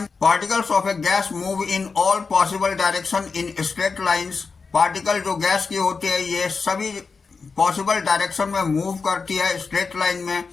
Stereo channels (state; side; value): quieter; right; 4.8 dB